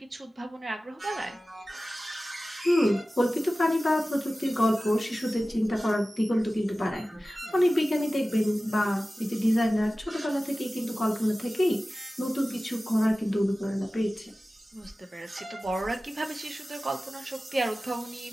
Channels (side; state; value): both; normal; correlation 0.96